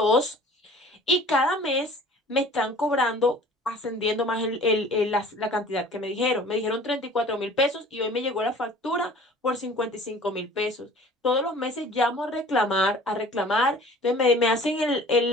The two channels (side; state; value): both; normal; correlation 0.47